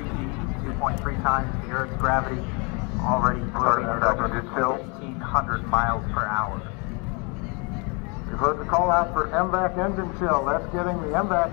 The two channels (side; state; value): right; quieter; 32.1 dB